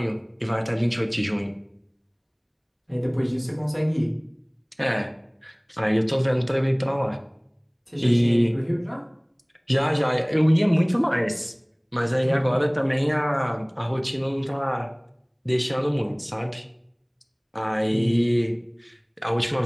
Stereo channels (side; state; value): both; identical; correlation 1.00